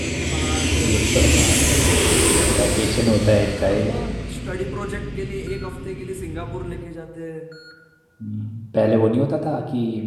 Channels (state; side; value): identical; both; correlation 1.00